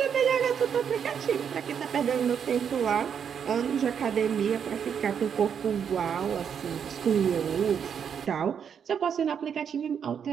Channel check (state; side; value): quieter; left; 7.6 dB